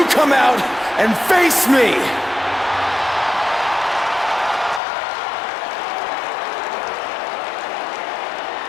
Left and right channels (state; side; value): drops out; right; at 4.8 s